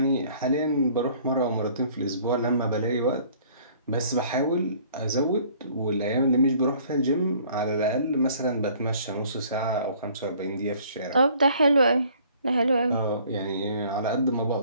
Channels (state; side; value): inverted; both; correlation -0.56